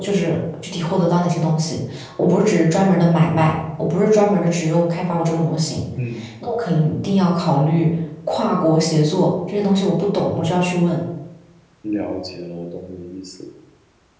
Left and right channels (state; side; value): identical; both; correlation 1.00